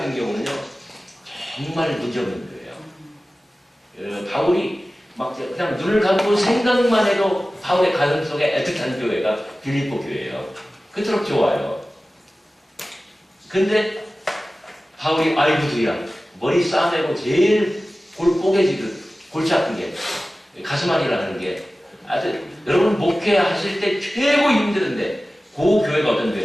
경우는요 정말 문제없는 교회예요. 바울이 막 그냥 눈을 감고 생각만 해도 바울의 가슴 속에 애틋한 교회가 빌립보 교회예요. 그토록 좋아요. 근데 바울이 아이고도야 머리 싸매고 제일 골 뽀개지듯 골치 아픈 게 가슴 안이라는 게 아주 여러분 목회하실 때 최고 힘드는데 그 교회가 어떤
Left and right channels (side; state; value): both; normal; correlation 0.96